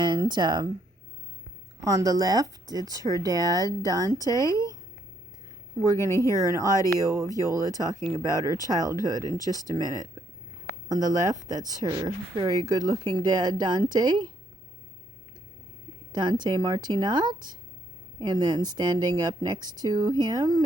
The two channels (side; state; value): both; normal; correlation 0.72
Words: on the left it's her dad Dante. We're going to hear an audio of Iole talking about her childhood in just a minute. On the left, that's her very good-looking dad Dante Martinat. And then standing up next to him